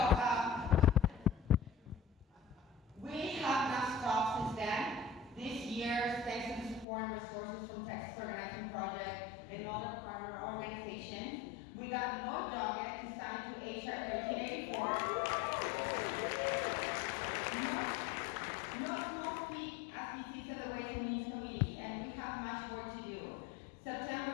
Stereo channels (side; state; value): right; drops out; at 6.9 s